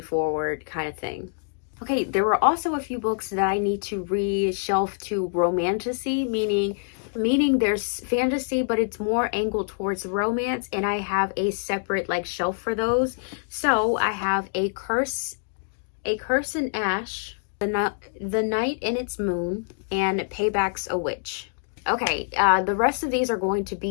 kind of thing. Okay, there were also a few books that I need to reshelf to romantasy, meaning there's fantasy, but it's more angled towards romance, and I have a separate like shelf for those. So I have A Curse in Ash, The Night in Its Moon, and Payback's a Witch. Okay, the rest of these are going to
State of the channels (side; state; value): right; silent; digital silence